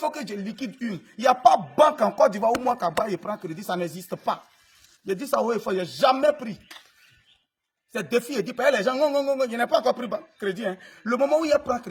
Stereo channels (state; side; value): identical; both; correlation 1.00